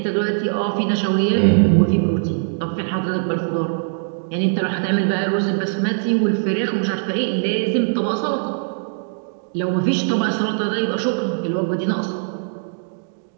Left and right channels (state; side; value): silent; left; digital silence